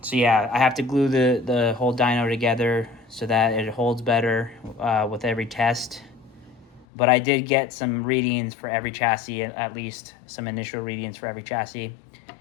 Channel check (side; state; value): right; drops out; at 6.9 s